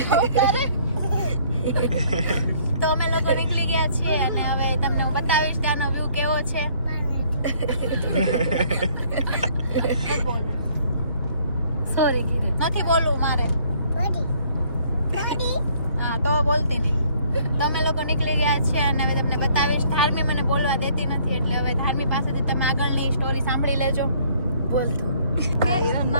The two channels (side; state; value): both; inverted; correlation -0.61